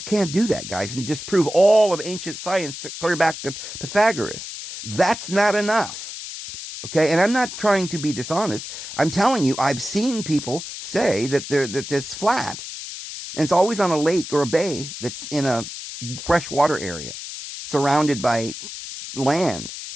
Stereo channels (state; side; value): noise; left; hiss, 9 dB below the sound